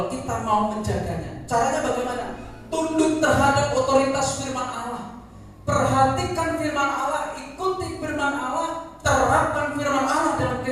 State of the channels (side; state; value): both; identical; correlation 1.00